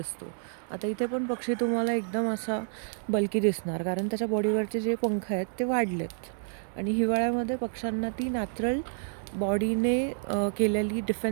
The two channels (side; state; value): left; silent; digital silence